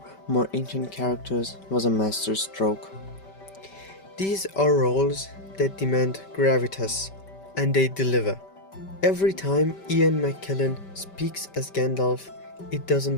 more ancient characters was a masterstroke. These are roles that demand gravitas, and they deliver. Every time Ian McKellen speaks as Gandalf, it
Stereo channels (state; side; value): late; right; 5.2 ms